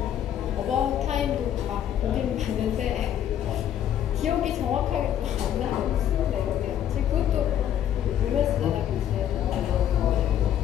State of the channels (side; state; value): right; quieter; 10.4 dB